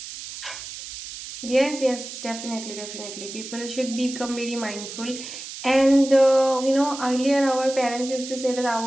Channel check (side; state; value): right; noise; hiss, 11 dB below the sound